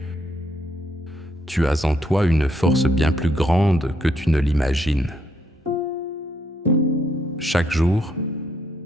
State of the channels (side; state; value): both; normal; correlation 0.73